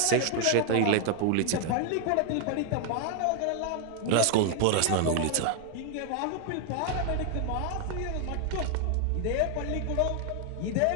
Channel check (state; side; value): different; both; correlation 0.00